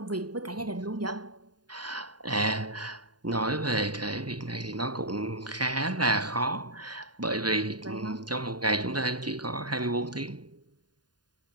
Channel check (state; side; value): late; left; 0.70 ms